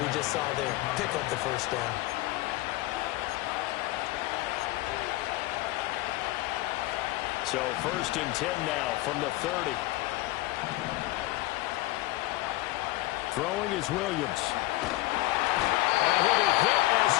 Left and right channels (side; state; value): right; quieter; 18.3 dB